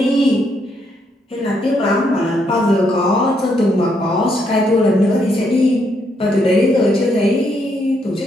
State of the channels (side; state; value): both; normal; correlation 0.75